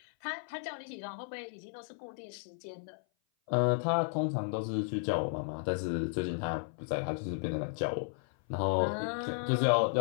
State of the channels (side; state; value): right; silent; 55 dB below the other